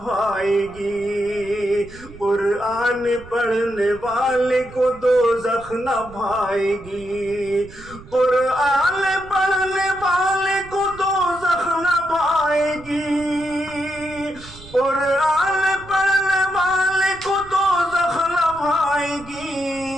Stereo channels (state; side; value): noise; right; rumble, 19 dB below the sound